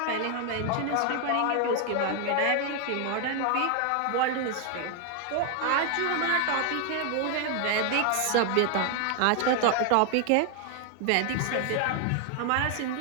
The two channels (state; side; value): different; both; correlation 0.00